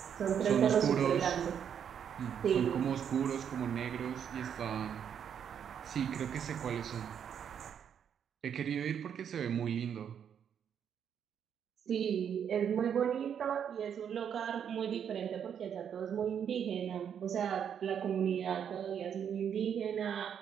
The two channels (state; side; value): quieter; left; 8.3 dB